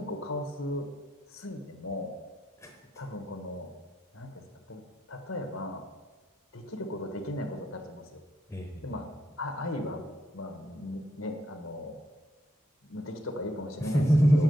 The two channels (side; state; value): both; normal; correlation 0.77